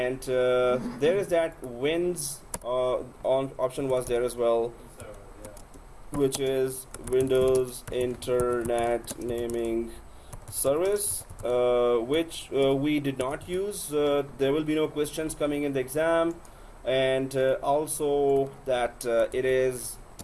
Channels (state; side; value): identical; both; correlation 1.00